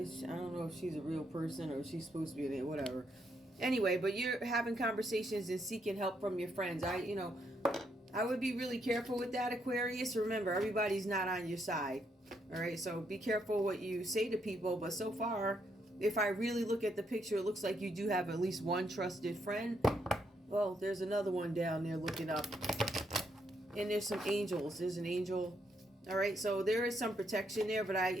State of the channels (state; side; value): normal; both; correlation 0.76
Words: know if she's a real person or if she's supposed to be in it, whatever. Anyway, but you're having conversations and seeking help from your friends. I would be really careful with that, Aquarius. Remember, everybody's not on your side. All right, so be careful what you say to people. But so far, if I really look at the picture, it looks like you do have at least one trusted friend. Well, there's another one down there looking up. And there's some angels. There's an angel. All right, so there is some protection there. But I,